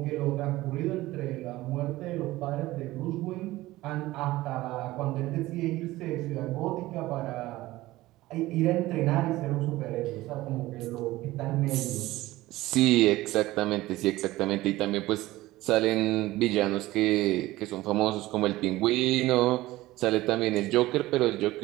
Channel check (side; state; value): left; quieter; 17.6 dB